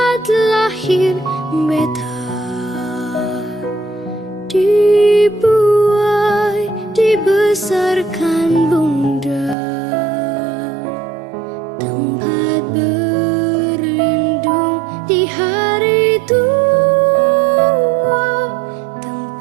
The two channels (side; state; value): left; drops out; at 9.6 s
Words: lahir beta, dibuai, dibesarkan bunda, tempat berlindung di hari tua,